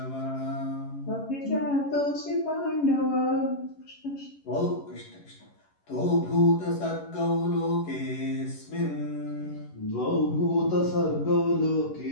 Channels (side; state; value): right; late; 11 ms